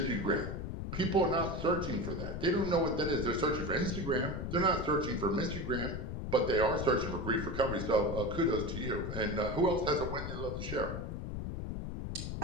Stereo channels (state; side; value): noise; left; rumble, 5 dB below the sound